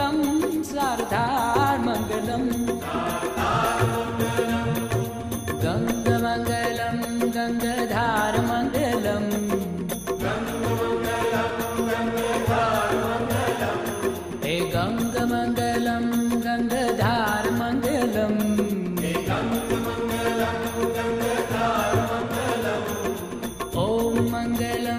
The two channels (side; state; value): both; identical; correlation 1.00